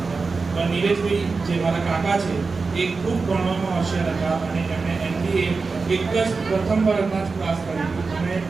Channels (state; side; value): quieter; left; 4.3 dB